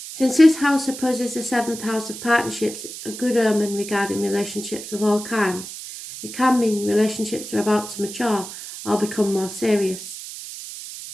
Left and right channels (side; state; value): right; noise; hiss, 11 dB below the sound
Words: Since this house opposes the 7th house of partnerships, a good omen regarding relationships of all kinds. It can mean relationships are about to mature or become more serious.